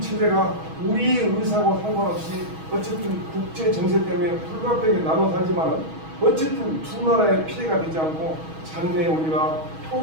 체제가 우리의 의사와 상관없이 어쨌든 국제 정세 때문에 불가피하게 나눠 살지만 어쨌든 두 나라의 피해가 되지 않고 장래에 우리가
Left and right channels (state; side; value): late; left; 6.3 ms